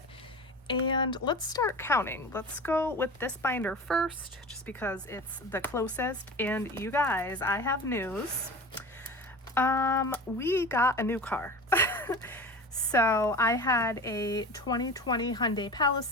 and let's start counting. Let's go with this binder first, just because it's the closest. And you guys, I have news. We got a new car. So I had a 2020 Hyundai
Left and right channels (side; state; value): both; normal; correlation 0.33